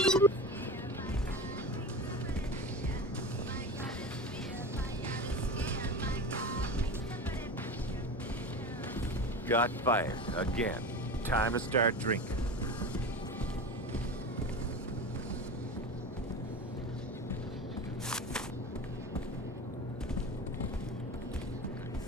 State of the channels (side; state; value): both; normal; correlation 0.29